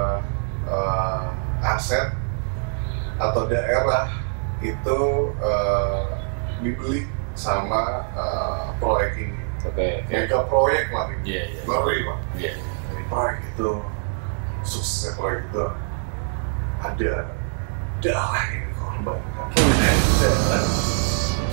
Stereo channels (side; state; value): left; silent; 63 dB below the other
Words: aset atau daerah itu dibeli sama proyek ini. Oke. Mega proyek lah ini. Iya. Ngeri Pak. Iya. Dari proyek itu, suksesnya proyek itu ada darah yang dikorbankan.